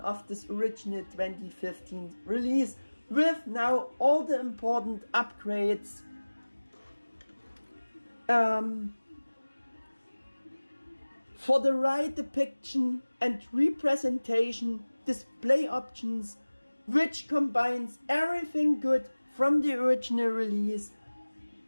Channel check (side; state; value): both; inverted; correlation -1.00